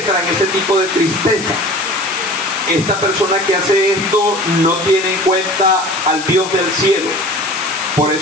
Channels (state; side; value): noise; left; hiss, 10 dB below the sound